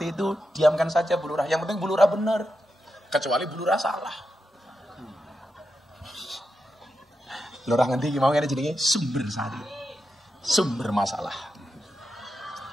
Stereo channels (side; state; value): both; normal; correlation 0.87